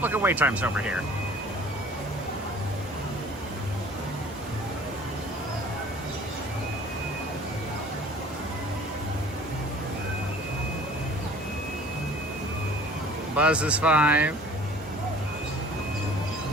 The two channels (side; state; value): both; normal; correlation 0.49